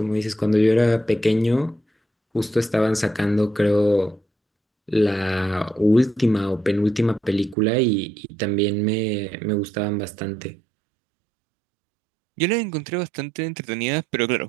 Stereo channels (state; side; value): drops out; left; at 7.6 s